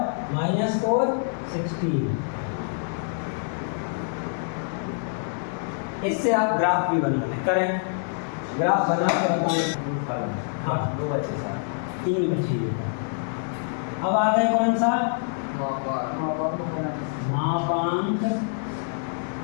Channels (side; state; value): right; silent; 61 dB below the other